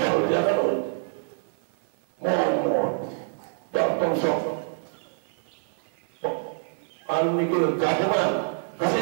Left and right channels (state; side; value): silent; left; digital silence